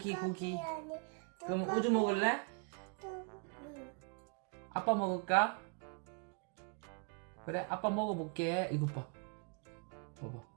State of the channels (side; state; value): left; quieter; 33.3 dB